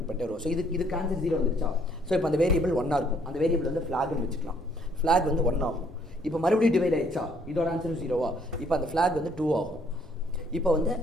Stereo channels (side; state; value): both; normal; correlation 0.65